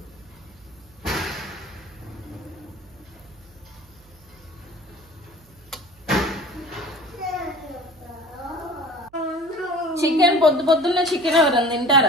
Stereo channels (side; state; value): right; noise; hum, 27 dB below the sound